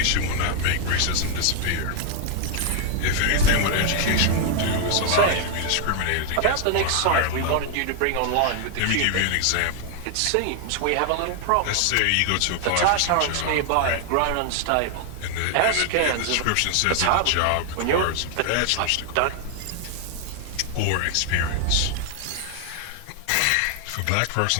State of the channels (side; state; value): both; different; correlation 0.00